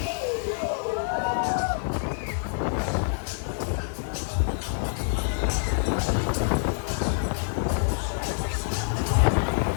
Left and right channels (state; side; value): silent; right; digital silence